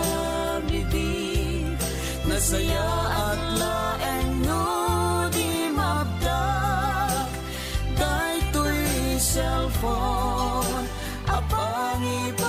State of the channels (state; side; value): identical; both; correlation 1.00